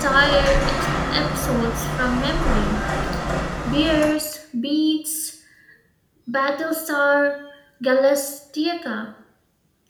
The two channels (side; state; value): both; identical; correlation 1.00